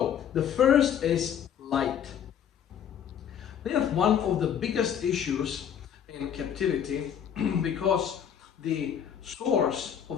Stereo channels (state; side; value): quieter; right; 8.9 dB